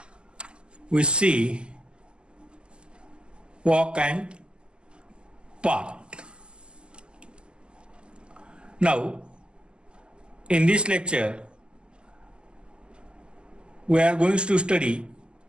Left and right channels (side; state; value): left; late; 0.049 ms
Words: we see walk and park. Now, in this lecture, we are going to study